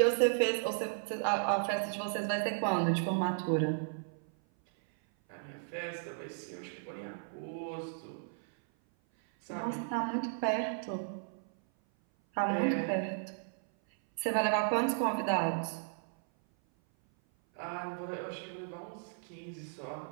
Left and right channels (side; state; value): left; silent; 55 dB below the other